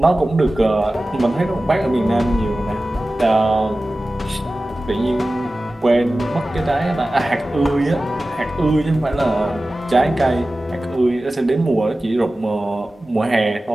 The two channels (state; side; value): normal; both; correlation 0.96